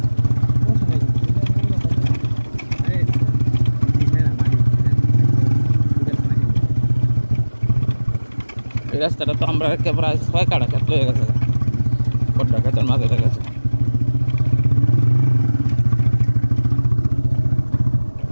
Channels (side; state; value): both; inverted; correlation -1.00